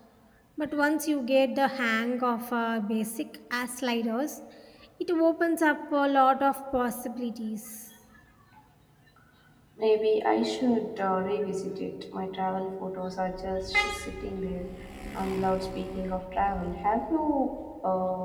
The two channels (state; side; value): identical; both; correlation 1.00